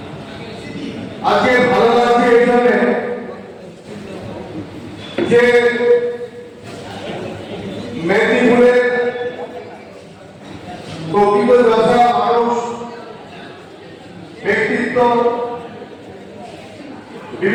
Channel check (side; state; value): both; identical; correlation 1.00